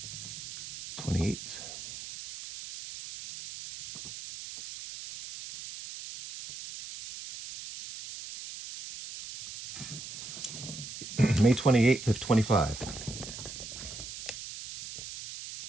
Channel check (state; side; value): noise; right; hiss, 11 dB below the sound